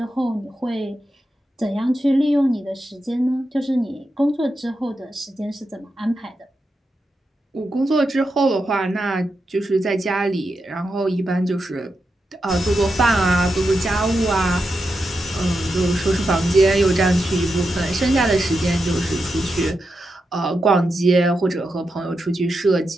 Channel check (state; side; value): normal; both; correlation 0.87